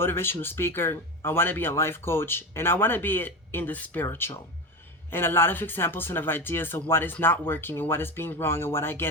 speaker. I want to be a life coach. And I want to be in the spiritual. And a lot of examples and of ideas of what is not working and what is being wrong and what I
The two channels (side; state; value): both; normal; correlation 0.22